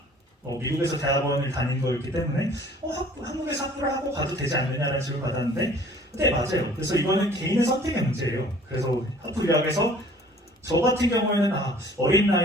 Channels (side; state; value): both; normal; correlation 0.52